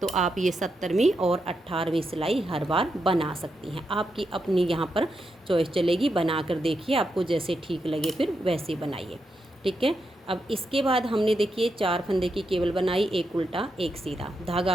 तो आप ये 17वीं और 18वीं सिलाई हर बार बना सकती हैं। आपकी अपनी यहाँ पर चॉइस चलेगी, बना कर देखिए, आपको जैसे ठीक लगे फिर वैसे बनाइए, ठीक है। अब इसके बाद हमने देखिए 4 फंदे की केबल बनाई, एक उल्टा एक सीधा, धागा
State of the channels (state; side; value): normal; both; correlation 0.84